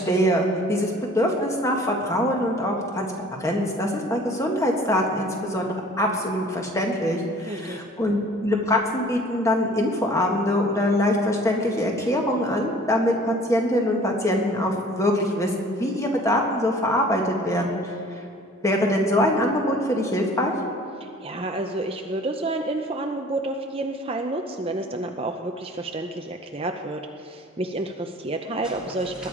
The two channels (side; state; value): both; normal; correlation 0.50